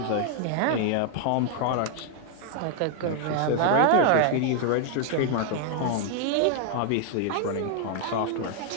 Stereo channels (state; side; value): different; both; correlation 0.00